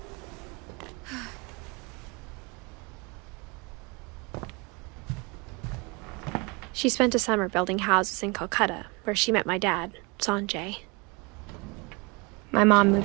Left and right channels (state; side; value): quieter; left; 28.4 dB